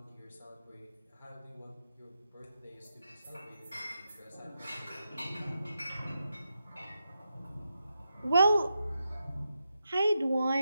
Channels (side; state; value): both; inverted; correlation -0.87